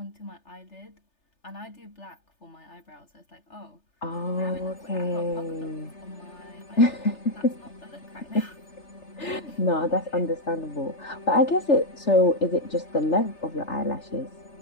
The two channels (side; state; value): right; late; 3.3 ms